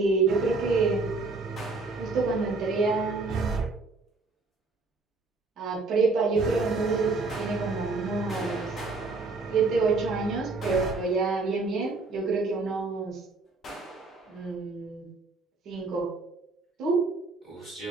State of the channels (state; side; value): quieter; left; 3.7 dB